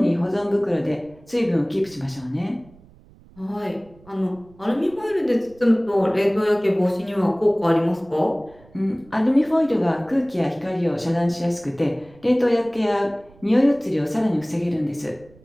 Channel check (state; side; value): noise; right; rumble, 26 dB below the sound